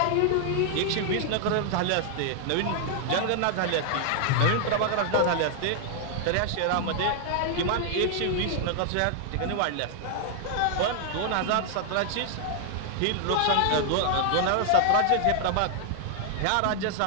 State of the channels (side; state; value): both; different; correlation 0.00